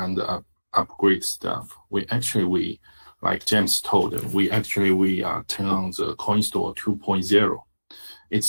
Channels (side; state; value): both; inverted; correlation -1.00